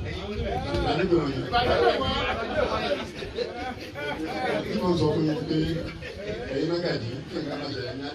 Wọ́n sọ fún mi pé ẹ̀yin mẹ́gàdì kí n ká máa ṣẹlẹ̀ ní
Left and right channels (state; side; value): identical; both; correlation 1.00